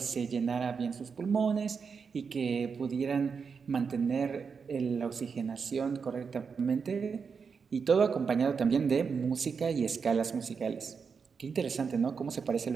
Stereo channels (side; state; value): left; quieter; 5.7 dB